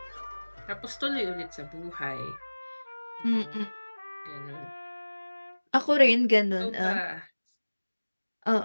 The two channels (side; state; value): both; inverted; correlation -1.00